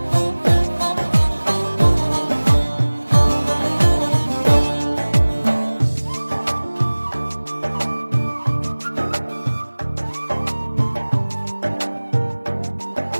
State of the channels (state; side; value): inverted; both; correlation -1.00